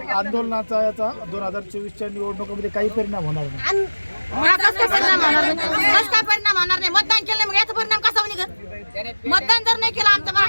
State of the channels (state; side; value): inverted; both; correlation -1.00